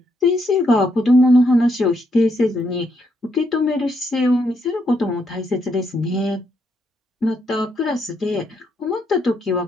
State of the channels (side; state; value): both; normal; correlation 0.76